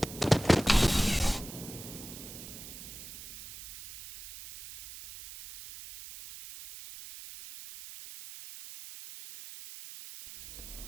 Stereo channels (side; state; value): right; noise; hiss, 13 dB below the sound